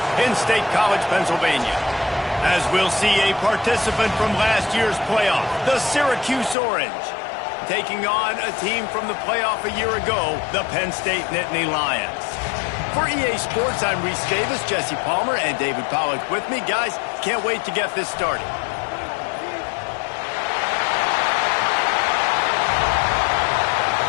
in State College, Pennsylvania. As we'll see a participant from last year's playoff, the Syracuse Orange, taking on a team from the playoff a year ago, the Penn State Nittany Lions. For EA Sports, I'm Reese Davis, Jesse Palmer, and David Pollack with me. Guys, can't wait to get this started.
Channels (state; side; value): drops out; right; at 6.6 s